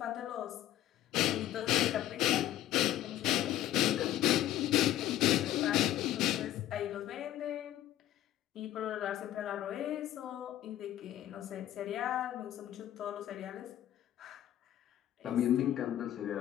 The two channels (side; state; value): right; quieter; 13.1 dB